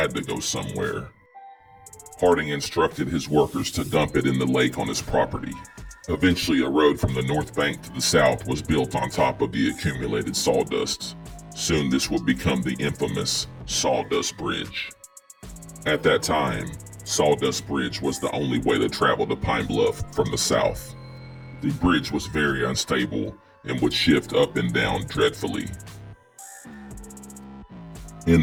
to go somewhere. Harding instructed his workers to dump it in the lake on his property. Eventually, a road from the north bank to the south was built on top of the accumulated sawdust. Soon this would become the infamous Sawdust Bridge. At that time, Sawdust Bridge was the only way to travel to Pine Bluff from the south. The bridge was very unstable and would shift up and down dreadfully. In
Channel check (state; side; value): identical; both; correlation 1.00